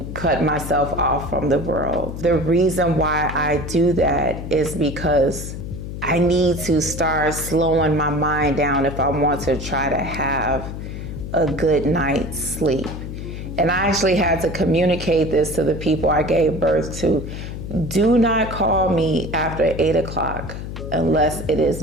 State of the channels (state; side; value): noise; left; hum, 8 dB below the sound